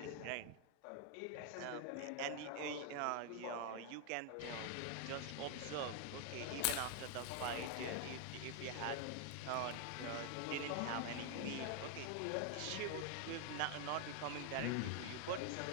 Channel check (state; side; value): different; both; correlation 0.00